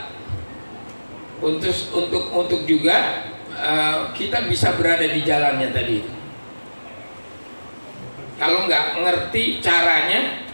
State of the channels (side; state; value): both; inverted; correlation -1.00